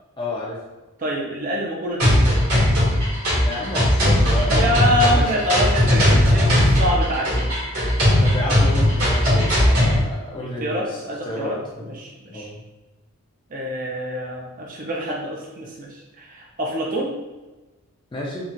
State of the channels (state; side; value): normal; both; correlation 0.64